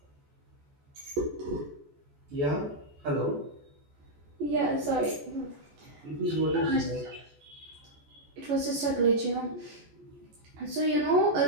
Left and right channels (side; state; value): left; late; 14 ms